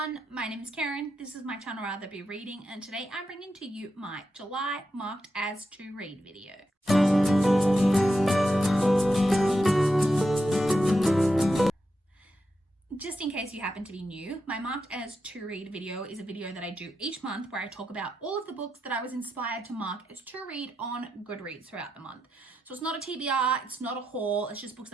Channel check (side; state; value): both; normal; correlation 0.86